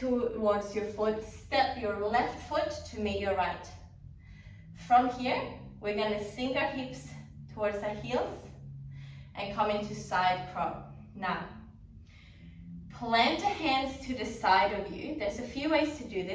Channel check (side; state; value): both; identical; correlation 1.00